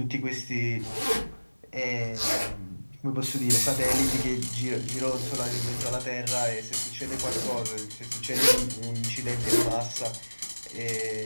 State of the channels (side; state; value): both; inverted; correlation -1.00